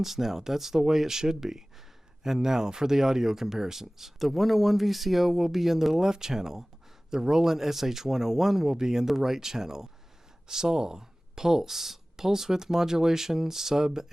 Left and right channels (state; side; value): normal; both; correlation 0.98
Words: now. That's the way it should be. And now for the audio comparisons. The 101 VCO will be in the left channel. The Roland SH-101 will be in the right channel. SAW, pulse with modulation, sub,